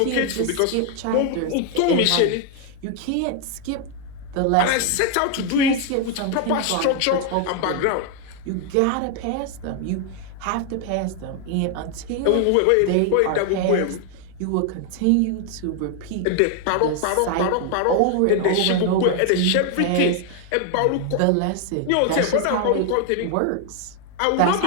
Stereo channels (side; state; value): both; different; correlation 0.00